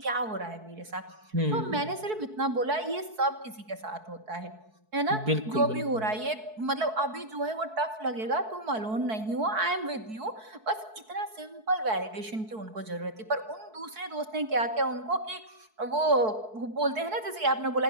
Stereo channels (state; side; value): late; left; 4.6 ms